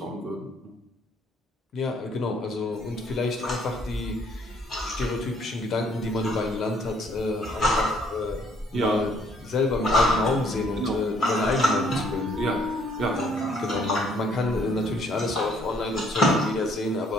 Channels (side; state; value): both; normal; correlation 0.65